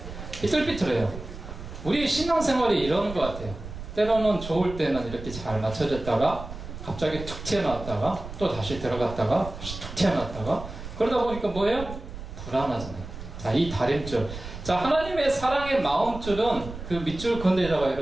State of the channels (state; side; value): noise; right; rumble, 11 dB below the sound